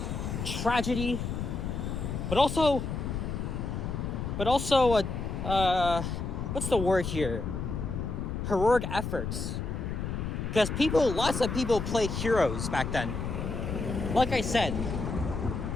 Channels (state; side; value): noise; left; rumble, 3 dB below the sound